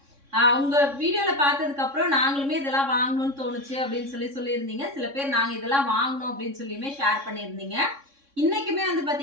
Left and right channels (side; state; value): left; late; 3.6 ms